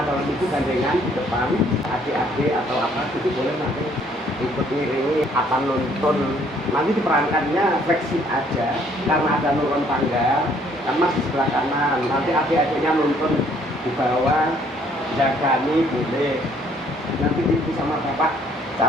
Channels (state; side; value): normal; both; correlation 0.63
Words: calon ibu gandengan di depan, adik-adik atau apa itu boleh nanti ikut ngiringi apa nuntun. Nanti diperankannya fleksib aja karena ada nurun tangga kan mas di sebelah kanan, nanti adik-adiknya nuntun di bawah jagani boleh. Nanti ibu sama bapak